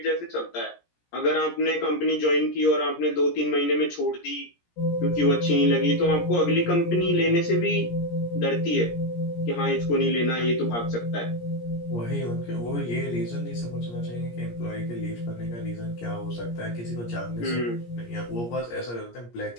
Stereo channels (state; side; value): late; right; 17 ms